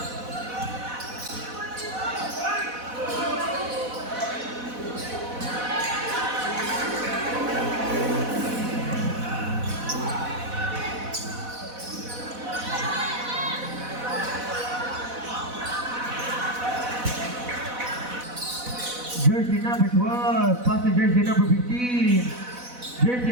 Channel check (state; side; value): late; left; 4.1 ms